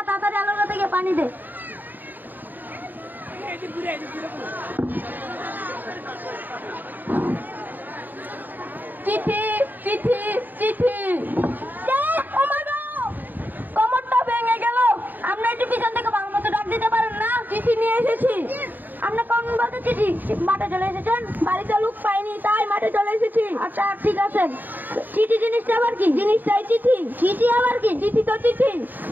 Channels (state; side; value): late; left; 0.088 ms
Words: তাড়াতাড়ি আলোর থেকে পানি দে। চিঠি চিঠি চিঠি। কোমরটা ভেঙে গেল। আপনি একটু পিছন থেকে ভালো মতো ডাক দিতে পারেন না? চিঠি নিয়ে এসেছি। আপনি কোন বলতে চিঠি? মাঠে চলে এসেছেন? বাড়িতে লোক পাইনি তাই মাঠে চলে এসেছি। আচ্ছা ঠিক আছে। চিঠি জিনিসটা আবার কি? জিনিসটাই চিঠি। চিঠি আবার কি? চিঠি তো চিঠি।